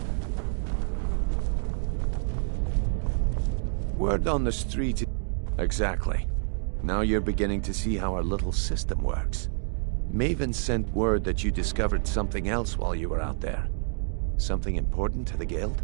Word on the street. Exactly. Now you're beginning to see how our little system works. Maven sent word that you discovered something else while you were out there. Something important to the Guild?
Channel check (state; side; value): silent; left; digital silence